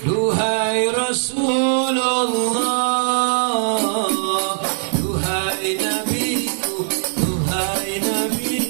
duhai Rasulullah, duhai nabiku, duhai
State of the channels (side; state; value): left; silent; digital silence